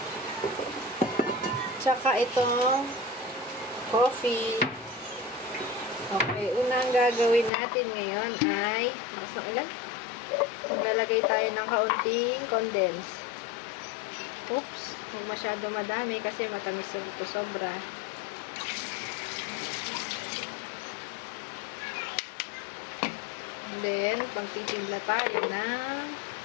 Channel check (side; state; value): right; drops out; at 7.5 s